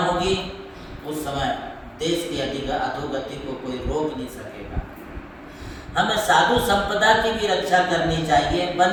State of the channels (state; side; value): identical; both; correlation 1.00